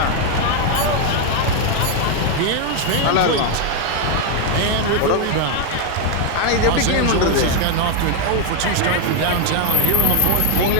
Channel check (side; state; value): both; different; correlation 0.01